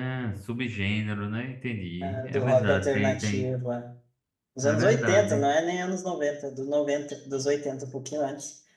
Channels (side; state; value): both; identical; correlation 1.00